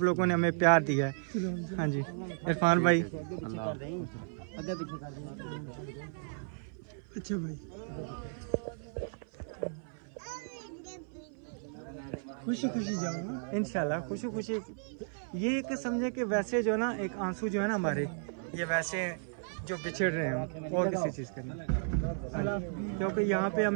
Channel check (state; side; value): silent; left; 55 dB below the other